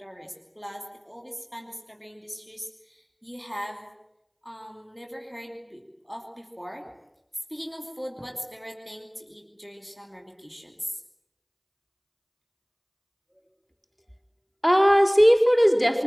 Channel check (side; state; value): both; identical; correlation 1.00